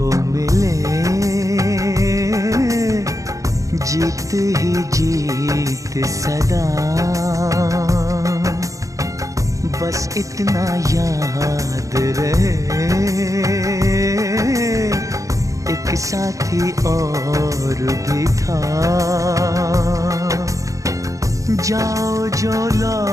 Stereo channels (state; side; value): late; left; 0.16 ms